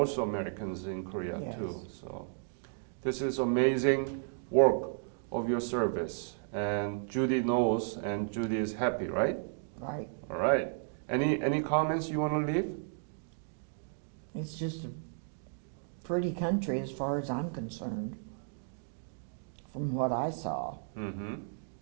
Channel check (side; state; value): left; silent; digital silence